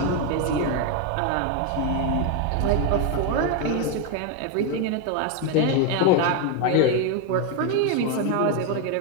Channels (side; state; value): both; different; correlation 0.02